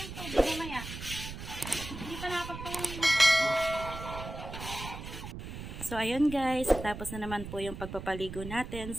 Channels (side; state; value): right; noise; rumble, 9 dB below the sound